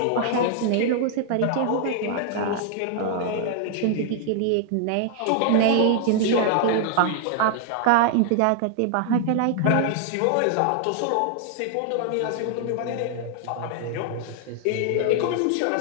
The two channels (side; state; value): both; different; correlation -0.01